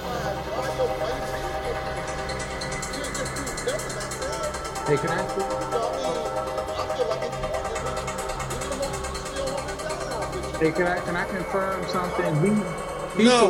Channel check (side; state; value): both; identical; correlation 1.00